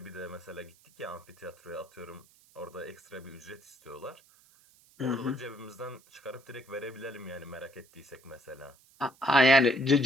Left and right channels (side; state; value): right; noise; hiss, 28 dB below the sound